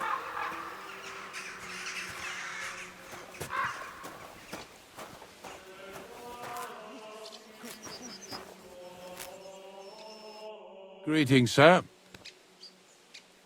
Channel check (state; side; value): identical; both; correlation 1.00